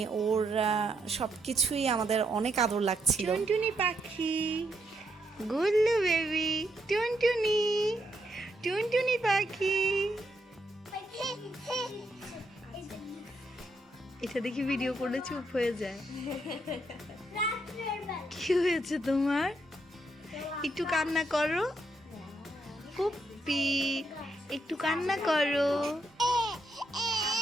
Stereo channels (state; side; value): normal; both; correlation 0.77